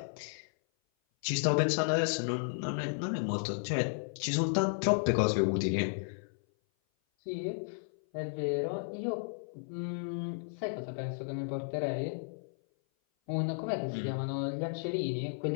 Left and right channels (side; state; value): right; silent; 55 dB below the other